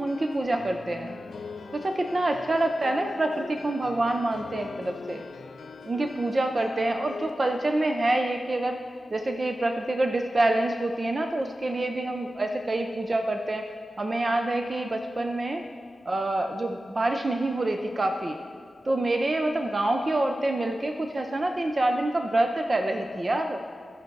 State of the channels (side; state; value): both; normal; correlation 0.94